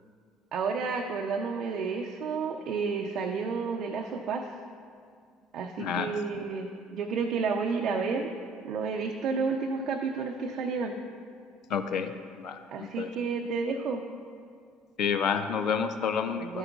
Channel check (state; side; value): normal; both; correlation 0.52